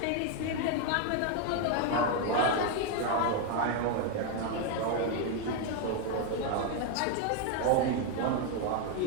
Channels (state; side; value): different; both; correlation 0.01